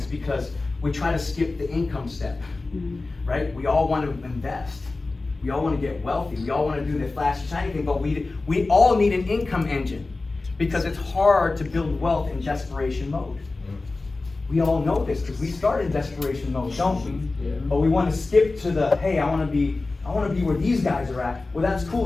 because we try to skip the income step, right? We all want to invest. We all want to get wealthy. We all want to do the flashy, shiny thing, but we all need an income engine because it's hard to build wealth in desperation mode. We all know this because we start in desperation mode, don't we? Yeah. But we want to skip to the, hey, I want to be where these guys are at. Well, that's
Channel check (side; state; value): right; quieter; 3.4 dB